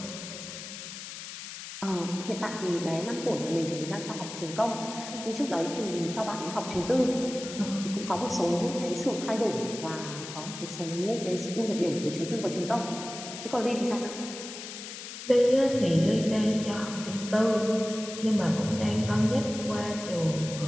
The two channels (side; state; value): left; noise; hiss, 10 dB below the sound